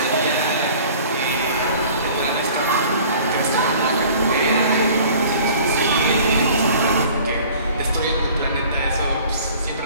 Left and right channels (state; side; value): inverted; both; correlation -0.48